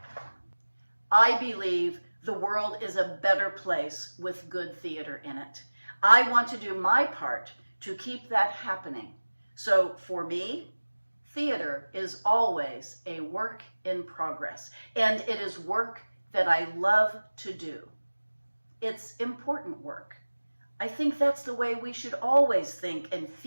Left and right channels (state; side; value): inverted; both; correlation -1.00